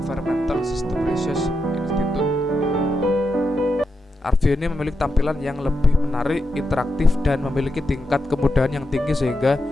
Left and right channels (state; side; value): normal; both; correlation 0.86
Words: System Research Institute. ArcView ini memiliki tampilan yang lebih menarik, interaktif, dan memiliki tingkat kemudahan yang tinggi sehingga